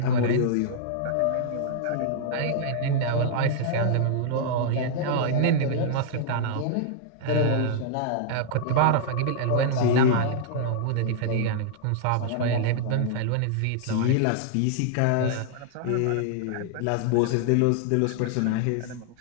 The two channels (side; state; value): both; different; correlation -0.01